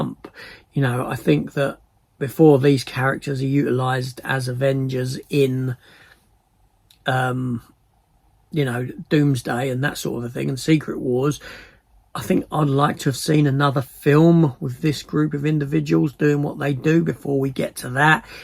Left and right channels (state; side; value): identical; both; correlation 1.00